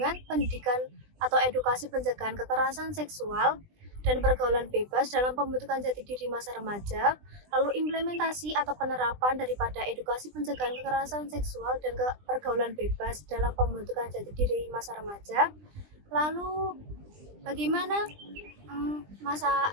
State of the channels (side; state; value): left; late; 20 ms